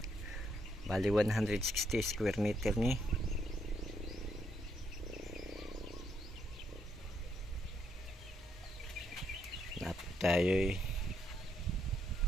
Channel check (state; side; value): normal; both; correlation 0.76